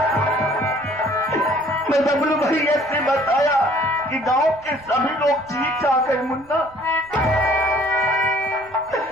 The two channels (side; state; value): right; noise; rumble, 28 dB below the sound